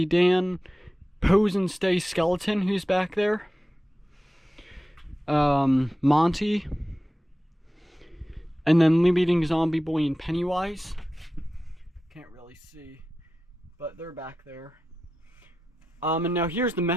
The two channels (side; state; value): both; normal; correlation 0.93